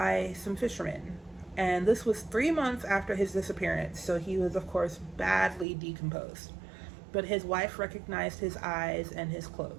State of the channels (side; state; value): left; drops out; at 5.7 s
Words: some fishermen. And this was 3 months after his disappearance, so he was, of course, badly decomposed. But his wife recognized his eyes and his